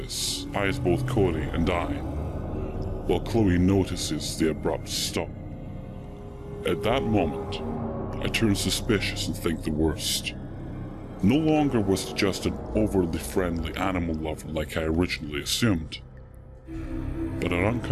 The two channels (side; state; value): both; identical; correlation 1.00